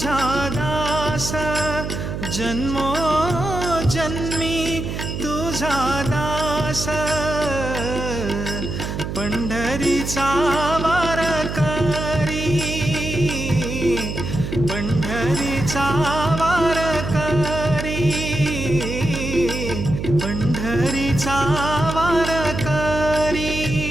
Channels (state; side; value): noise; right; hum, 5 dB below the sound